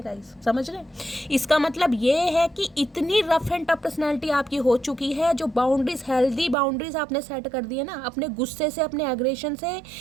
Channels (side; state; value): left; drops out; at 6.6 s